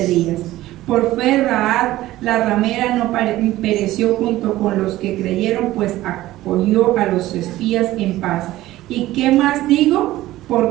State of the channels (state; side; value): quieter; left; 16.0 dB